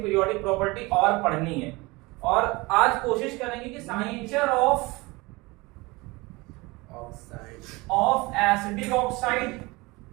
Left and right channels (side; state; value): left; quieter; 23.5 dB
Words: पीरियोडिक प्रॉपर्टी और पढ़नी है। और आज कोशिश करेंगे कि nature of acidic oxide